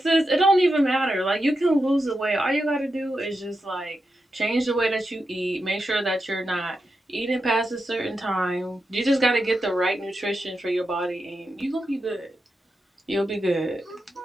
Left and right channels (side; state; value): both; normal; correlation 0.88